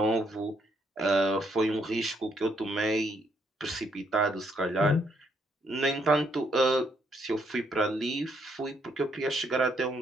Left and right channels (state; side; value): normal; both; correlation 0.72